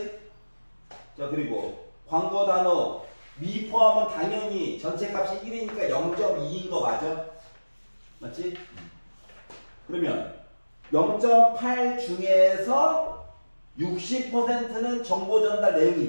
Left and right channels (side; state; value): both; inverted; correlation -1.00